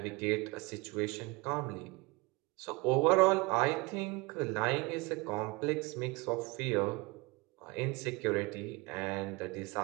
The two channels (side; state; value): left; quieter; 25.4 dB